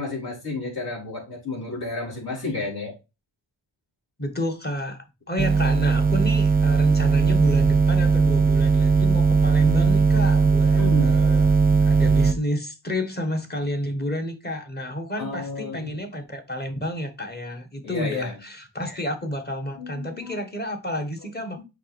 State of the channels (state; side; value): quieter; left; 3.6 dB